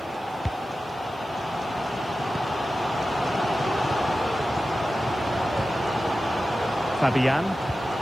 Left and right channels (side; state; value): right; noise; hiss, 29 dB below the sound